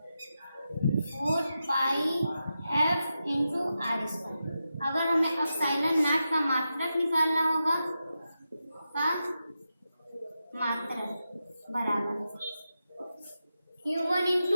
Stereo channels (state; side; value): inverted; both; correlation -0.89